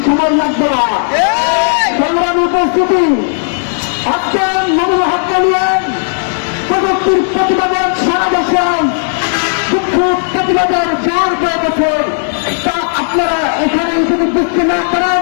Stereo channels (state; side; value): silent; right; digital silence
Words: সময় লাগবে না। সংগ্রামী উপস্থিতি, আজকে মামুনুল হককে নিয়ে প্রযুক্তির প্রতিবাদের সারা দেশে বিক্ষোভ প্রতিবাদের জোর হয়ে গেছে। তা আপনারা এখানে যদি বুঝতে না